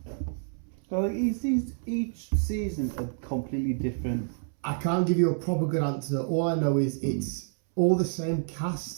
Like each season a completely different. I can't give you a proper good answer. All I know is it's all the same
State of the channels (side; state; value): left; silent; 59 dB below the other